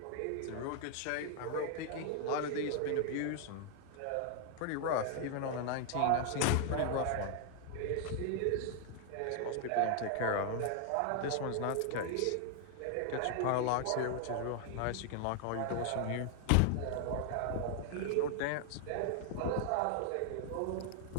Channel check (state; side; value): different; both; correlation 0.00